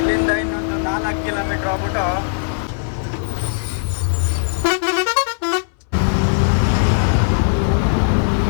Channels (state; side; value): silent; right; 64 dB below the other